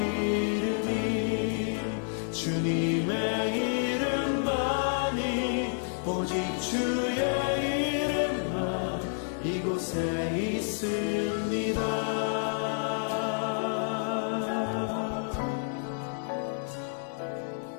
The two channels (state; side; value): silent; right; 58 dB below the other